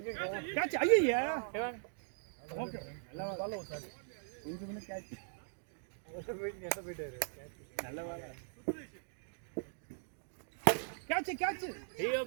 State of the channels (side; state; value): left; silent; digital silence